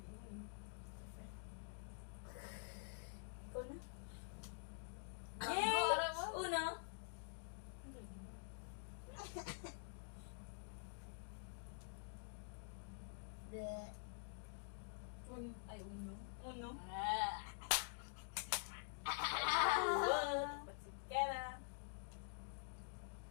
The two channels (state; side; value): silent; right; digital silence